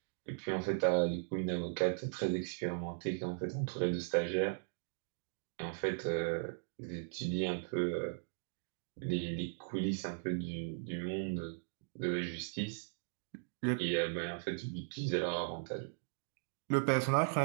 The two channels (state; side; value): silent; left; digital silence